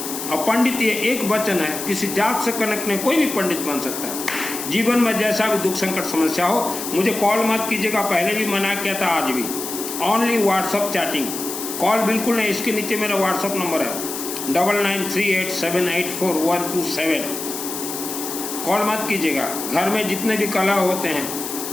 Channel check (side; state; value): left; noise; hiss, 7 dB below the sound